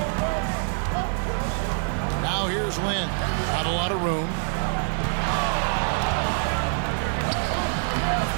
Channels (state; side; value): silent; left; 56 dB below the other